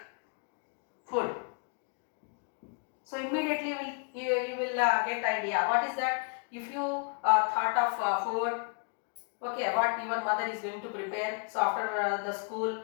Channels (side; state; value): right; quieter; 38.4 dB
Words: food. So immediately you will get idea. What is that? If you thought of food, okay, what your mother is going to prepare. So after the school,